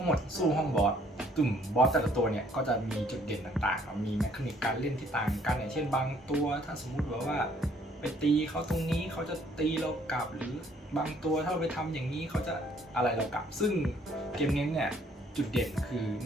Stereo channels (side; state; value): both; normal; correlation 0.63